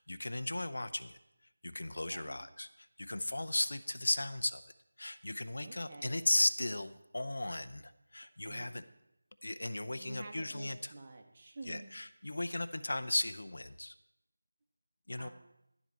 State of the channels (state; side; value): inverted; both; correlation -1.00